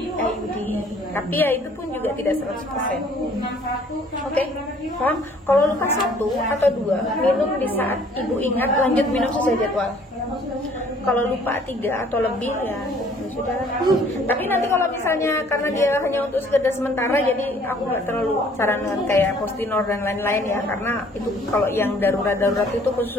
Tapi ya itu pun juga tidak 100%. Oke, paham? Kalau luka 1 atau 2, minum di saat ibu ingat, lanjut minum sesuai jadwal. Kalau lupa 3 atau lebih ya sudah. Tapi nanti kalau misalnya karena dia hanya untuk sekedar sementara, jadi aku nggak terlalu sarankan kayak Postinor dan lain-lain ya, karena itu kalau yang darurat itu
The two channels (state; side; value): normal; both; correlation 0.57